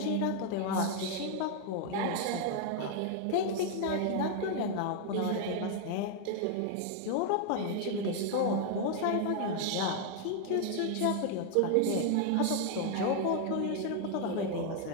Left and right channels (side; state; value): both; different; correlation 0.00